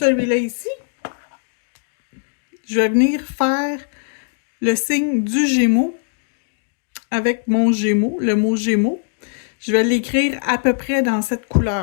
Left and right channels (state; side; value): silent; right; 66 dB below the other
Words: ici, je vais venir faire le signe du Gémeaux avec mon Gémeaux, le mot Gémeaux. Je vais l'écrire à peu près dans cette